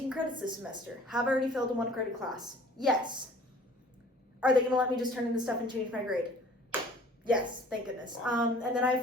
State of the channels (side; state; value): both; normal; correlation 0.51